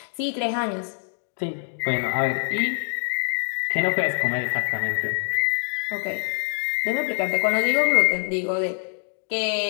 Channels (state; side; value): silent; right; 59 dB below the other